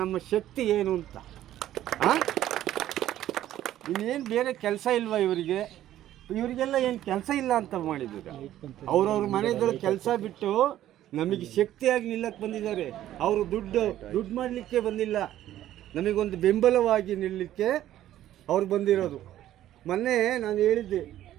ನಮ್ಮ ಶಕ್ತಿ ಏನು ಅಂತ. ಇನ್ನೇನು ಬೇರೆ ಕೆಲಸ ಇಲ್ವಾ ಇವರಿಗೆ? ಇವರಿಗೆಲ್ಲ ಏನು ಕೆಲಸ ಇಲ್ಲ ಅಂತ ಮಾಡಿದ್ರು. ಅವ್ರವ್ರ ಮನೆಗಳ ಕೆಲಸ ಬಿಟ್ಟು ನಮಗೆ ಶಕ್ತಿಯಾಗಿ ನಿಲ್ಲಕ್ಕೆ ಬಂದಿದ್ದಾರೆ. ಅವರು ದುಡ್ಡು ಮಾಡಲಿಕ್ಕೆ ಬಂದಿಲ್ಲ, ನಮಗೊಂದು ಬೆಂಬಲವಾಗಿ ನಿಲ್ಲಲಿಕ್ಕೆ ಅವ್ರು ಬಂದಿರೋದು. ಮೊನ್ನೆ ನಾನು ಹೇಳಿದ್ದೆ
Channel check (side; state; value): left; quieter; 12.8 dB